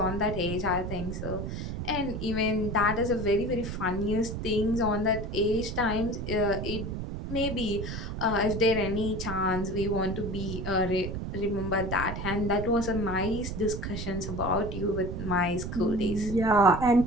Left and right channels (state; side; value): noise; right; rumble, 5 dB below the sound